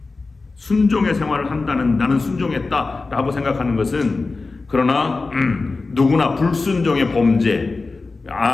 순종의 생활을 한다는, 나는 순종했다 라고 생각하는 것은, 그러나 누구나 불순종의 범죄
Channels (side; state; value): right; quieter; 3.8 dB